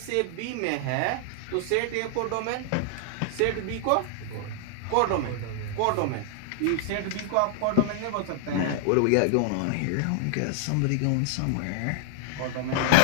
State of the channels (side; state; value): both; different; correlation -0.01